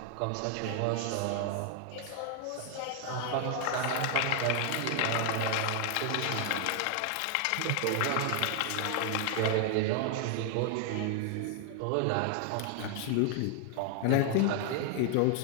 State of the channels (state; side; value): different; both; correlation 0.00